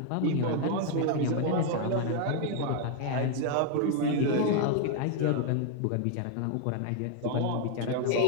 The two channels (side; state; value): both; different; correlation 0.00